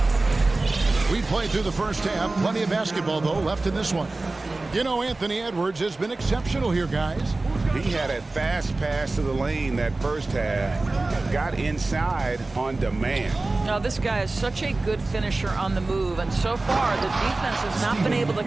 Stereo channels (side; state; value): left; quieter; 3.2 dB